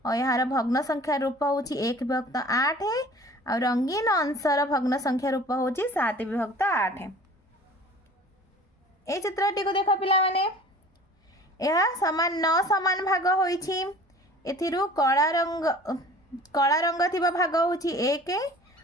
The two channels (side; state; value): both; normal; correlation 0.45